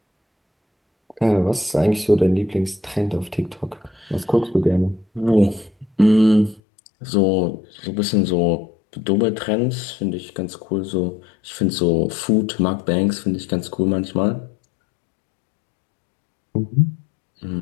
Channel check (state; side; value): drops out; right; at 6.6 s